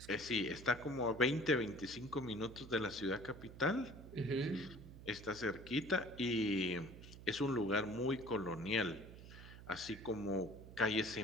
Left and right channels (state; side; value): noise; right; hum, 15 dB below the sound